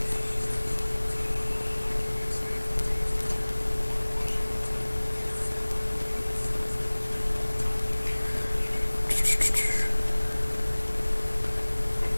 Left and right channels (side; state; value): both; inverted; correlation -1.00